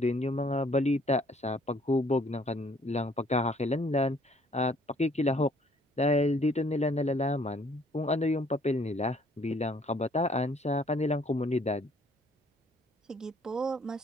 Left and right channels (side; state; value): both; normal; correlation 0.61